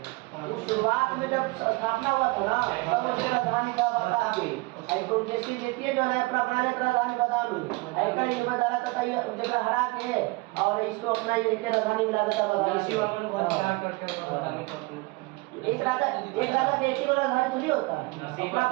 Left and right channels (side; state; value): left; quieter; 24.3 dB